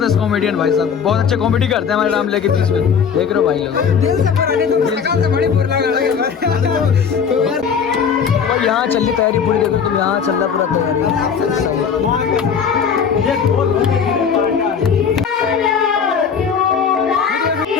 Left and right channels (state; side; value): quieter; right; 6.8 dB